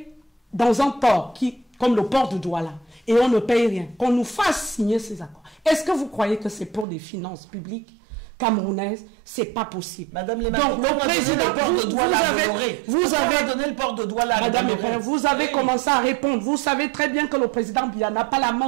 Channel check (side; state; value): left; drops out; at 6.9 s